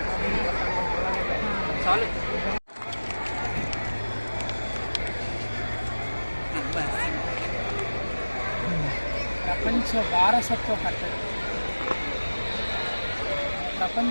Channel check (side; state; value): both; inverted; correlation -1.00